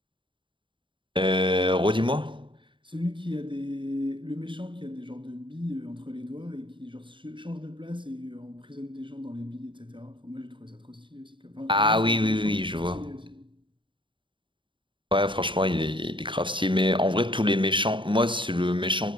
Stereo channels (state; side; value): late; left; 0.24 ms